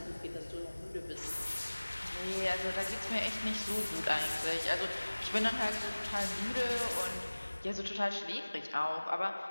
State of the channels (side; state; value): both; inverted; correlation -1.00